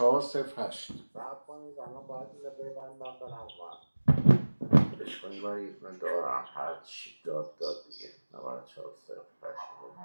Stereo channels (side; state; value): both; inverted; correlation -1.00